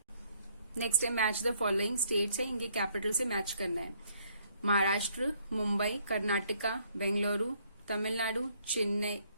Next है मैच द फॉलोइंग स्टेट्स है, इनके कैपिटल से मैच करना है। Maharashtra, Mumbai, Karnataka, Bengaluru, Tamil Nadu, Chennai,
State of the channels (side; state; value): both; inverted; correlation -0.67